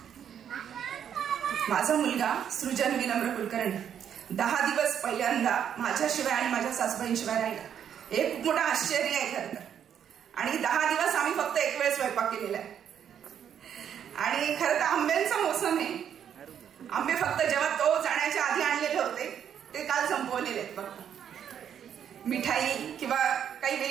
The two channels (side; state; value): left; quieter; 8.9 dB